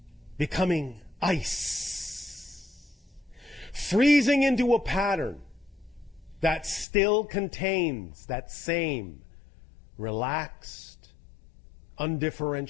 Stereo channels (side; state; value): right; drops out; at 6.9 s